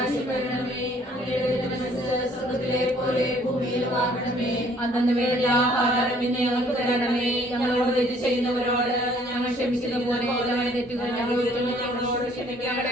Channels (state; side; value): normal; both; correlation 0.60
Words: വരണമേ, അങ്ങയുടെ തിരുമനസ്സ് സ്വർഗ്ഗത്തിലെ പോലെ ഭൂമിയിലുമാകണമേ. അന്നന്ന് വേണ്ട ആഹാരം ഇന്ന് ഞങ്ങൾക്ക് തരണമേ. ഞങ്ങളോട് തെറ്റ് ചെയ്യുന്നവരോട് ഞങ്ങൾ ക്ഷമിക്കുന്ന പോലെ തെറ്റുകൾ ഞങ്ങളോട്